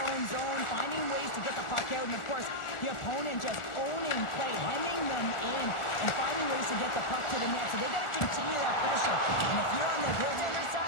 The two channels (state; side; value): late; right; 1.4 ms